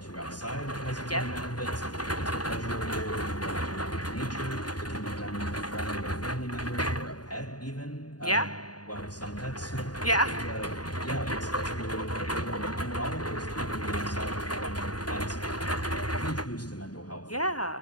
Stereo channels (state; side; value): late; right; 0.69 ms